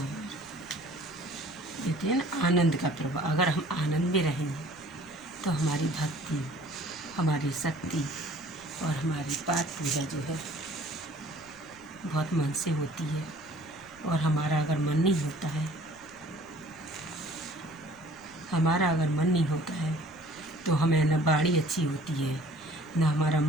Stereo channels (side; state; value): left; noise; rumble, 25 dB below the sound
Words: कहते हैं ना, आनंद का प्रभाव। अगर हम आनंद में रहेंगे तो हमारी भक्ति, हमारी शक्ति और हमारी पाठ पूजा जो है बहुत मन से होती है। और हमारा अगर मन नहीं होता है तो हमें न बाड़ी अच्छी होती है, न हमारा